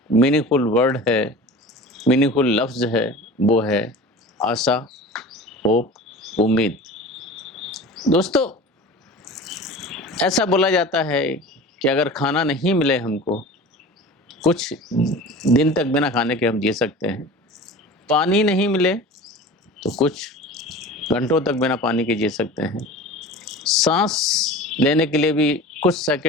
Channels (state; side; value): normal; both; correlation 0.36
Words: मीनिंगफुल वर्ड है, मीनिंगफुल लफ्ज़ है, वो है आशा, होप, उम्मीद। दोस्तों, ऐसा बोला जाता है कि अगर खाना नहीं मिले हमको, कुछ दिन तक बिना खाने के हम जी सकते हैं। पानी नहीं मिले तो कुछ घंटों तक बिना पानी के जी सकते हैं। सांस लेने के लिए भी कुछ